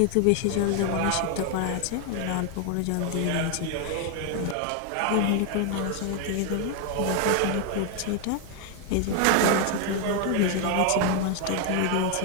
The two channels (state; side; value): different; both; correlation 0.01